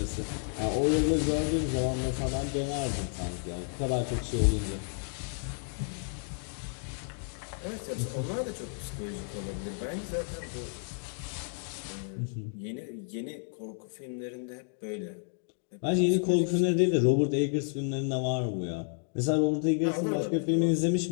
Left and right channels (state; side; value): silent; right; 57 dB below the other